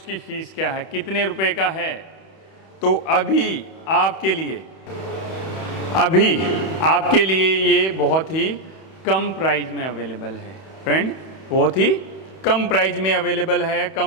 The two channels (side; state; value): right; late; 31 ms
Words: की फ़ीस क्या है, कितने रुपए का है? तो अभी आपके लिए ये बहुत ही कम प्राइस में अवेलेबल है फ्रेंड, बहुत ही कम प्राइस में अवेलेबल है।